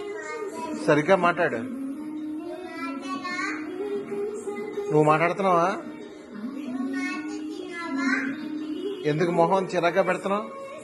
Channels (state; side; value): identical; both; correlation 1.00